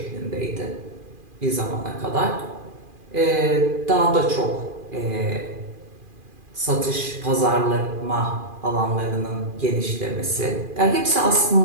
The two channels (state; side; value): late; left; 2.4 ms